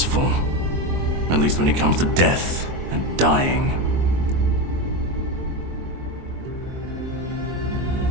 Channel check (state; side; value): late; left; 22 ms